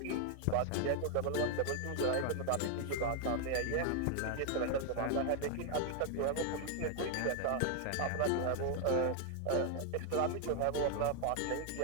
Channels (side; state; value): both; different; correlation 0.00